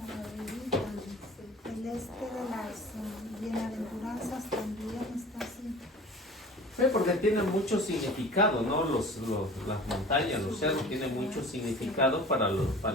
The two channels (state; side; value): normal; both; correlation 0.42